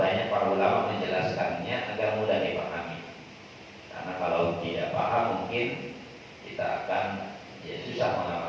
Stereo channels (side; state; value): both; identical; correlation 1.00